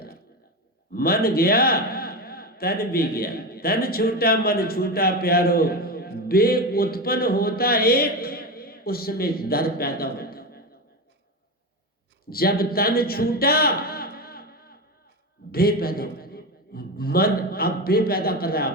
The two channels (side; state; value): both; normal; correlation 0.19